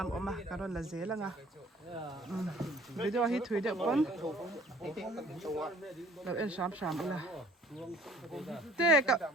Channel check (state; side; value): normal; both; correlation 0.54